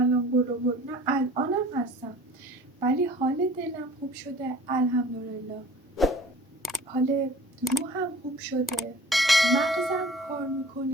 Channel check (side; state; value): both; normal; correlation 0.47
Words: برو، نه الانم هستم، ولی حال دلم خوب شده الحمدلله، حال روحم خوب شده، مغزم کار